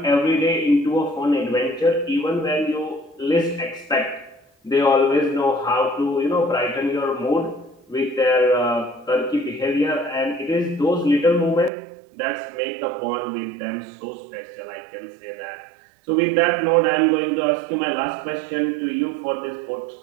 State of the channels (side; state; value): left; drops out; at 11.7 s